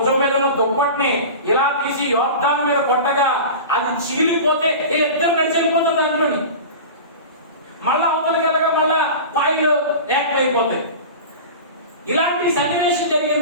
మీద ఉన్న దుప్పటిని ఇలా తీసి యోర్దాను మీద కొట్టగా అది చీలిపోతే ఇద్దరు నడిచి వెళ్ళిపోతారు దాంట్లోని. మళ్ళా అవతలికి వెళ్ళగా మళ్ళా పాయలు ఏకమైపోతాయి. ఇలాంటి సన్నివేశం జరిగిన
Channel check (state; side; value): inverted; both; correlation -0.32